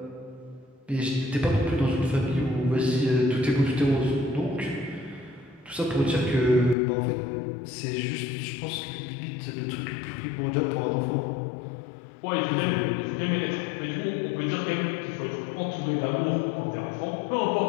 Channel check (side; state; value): right; drops out; at 6.8 s